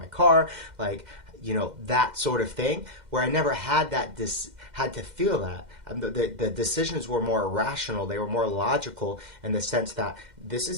car? Like, that sort of thing, where I never had had to feel that. The decisions were more rational. They were more logical in the sense that this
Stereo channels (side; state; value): left; late; 2.1 ms